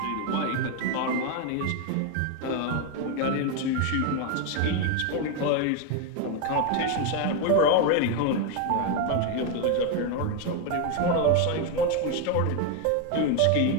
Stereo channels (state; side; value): different; both; correlation 0.01